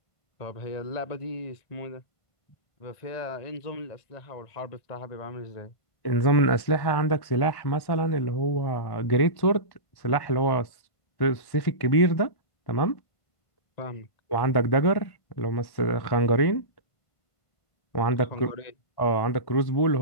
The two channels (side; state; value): right; late; 1.1 ms